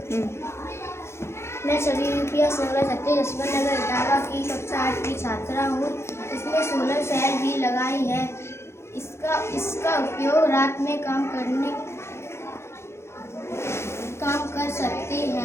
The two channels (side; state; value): right; late; 0.13 ms